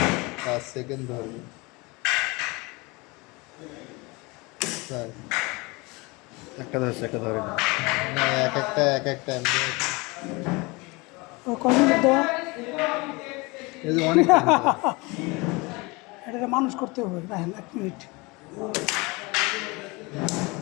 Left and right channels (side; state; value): right; quieter; 25.6 dB